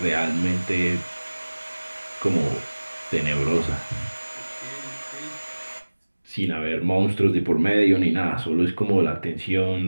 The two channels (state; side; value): inverted; both; correlation -1.00